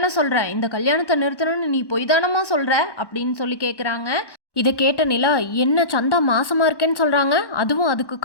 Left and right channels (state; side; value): late; right; 1.1 ms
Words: சொல்கிற, இந்த கல்யாணத்தை நிறுத்தணும்னு நீ பொய் தானமா சொல்கிற அப்படின்னு கேட்குறாங்க. இதை கேட்ட நிலா, என்ன சந்தா மாசமாக இருக்கேன்னு சொல்கிறாங்க, அதுவும் அதுக்கு